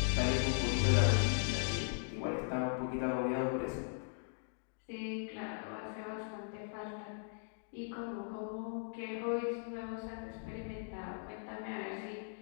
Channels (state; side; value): silent; right; digital silence